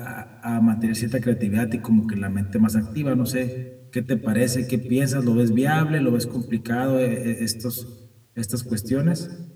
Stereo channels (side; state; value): both; identical; correlation 1.00